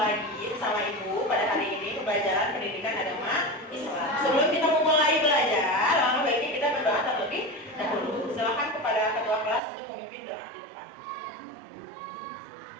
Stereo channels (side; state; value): left; drops out; at 9.6 s